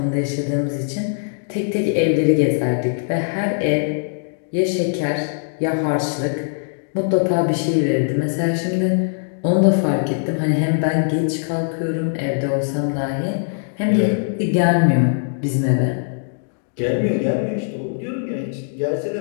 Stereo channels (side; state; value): right; silent; digital silence